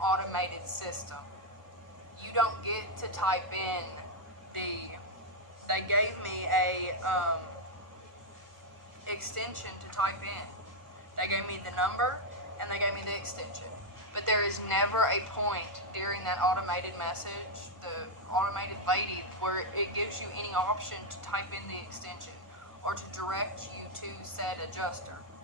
automated system. You don't get to type in they gave me a extension to type in. They gave me the number and they gave me the extension. But there is never a point during that automated message, the automated lady, where it gives you any option to type in the extension or to direct you to said adjuster.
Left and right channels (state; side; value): late; left; 1.2 ms